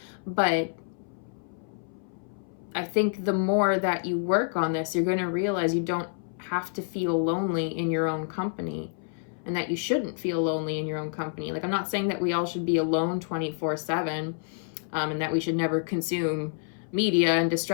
but I think the more that you work on this, you're going to realize you don't have to feel lonely in your own company, and that you shouldn't feel lonely in your own company. Like, I'm not saying that we all should be alone 24/7, and that we should never consume media and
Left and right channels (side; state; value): right; silent; 59 dB below the other